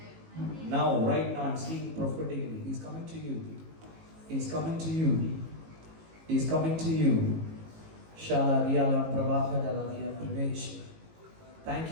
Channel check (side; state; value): left; late; 18 ms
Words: now, right now. I'm seeing prophetically. He is coming to you. He is coming to you. He is coming to you. Shala riyala pravaha daladiya pravesh. Thank